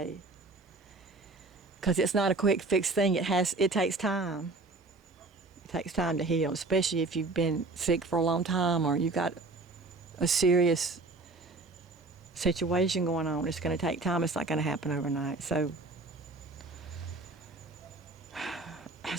because it's not a quick fix thing. It takes time. It takes time to heal, especially if you've been sick for a long time or you've got a serious situation going on. It's going to take time. It's not going to happen overnight. So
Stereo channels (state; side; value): quieter; left; 3.4 dB